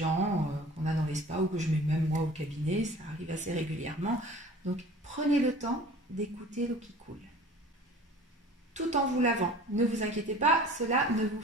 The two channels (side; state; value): both; normal; correlation 0.45